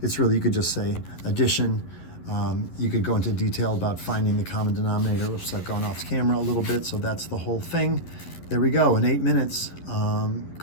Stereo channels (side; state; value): right; late; 11 ms